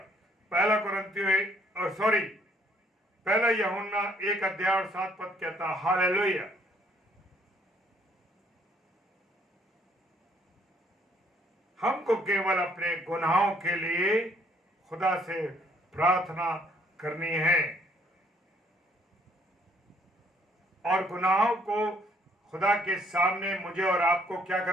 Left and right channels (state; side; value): normal; both; correlation 0.65